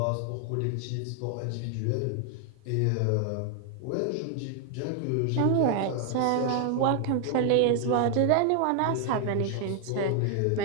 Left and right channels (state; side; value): different; both; correlation 0.00